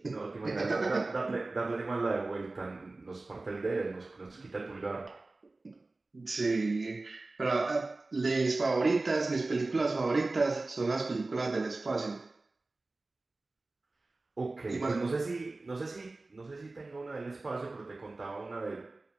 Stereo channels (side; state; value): left; quieter; 3.2 dB